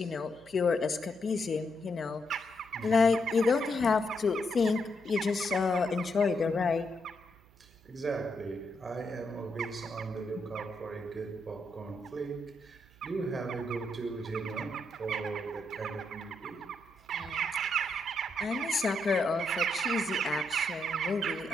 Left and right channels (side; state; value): right; noise; hum, 27 dB below the sound